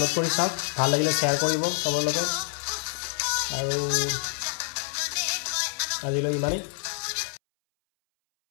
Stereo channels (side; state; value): right; silent; 60 dB below the other